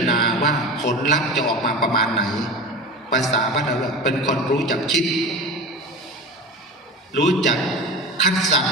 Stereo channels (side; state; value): both; normal; correlation 0.30